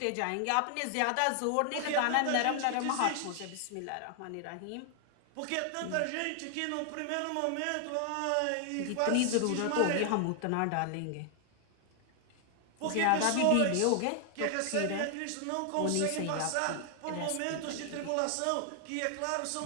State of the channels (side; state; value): both; different; correlation 0.00